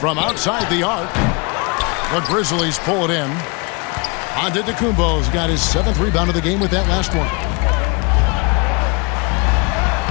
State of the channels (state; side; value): quieter; right; 31.1 dB